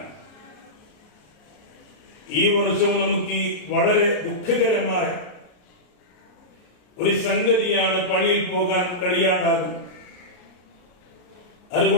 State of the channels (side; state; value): right; late; 33 ms